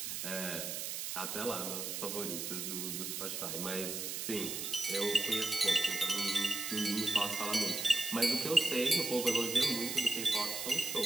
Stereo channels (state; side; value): noise; right; hiss, 4 dB below the sound